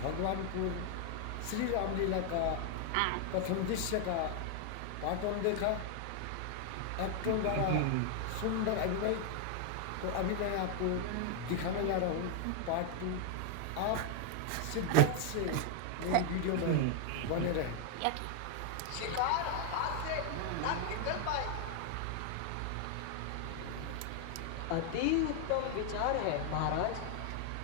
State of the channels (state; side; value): different; both; correlation 0.00